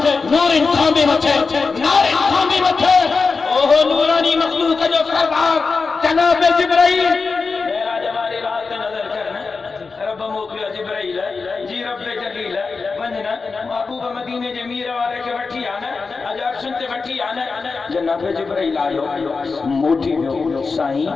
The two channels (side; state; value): right; quieter; 4.5 dB